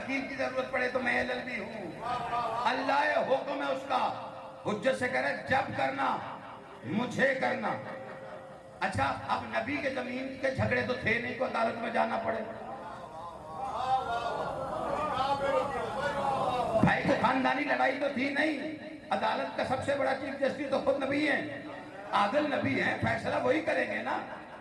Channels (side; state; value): both; identical; correlation 1.00